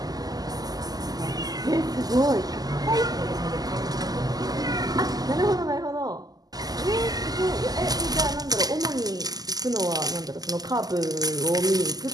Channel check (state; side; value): late; left; 0.18 ms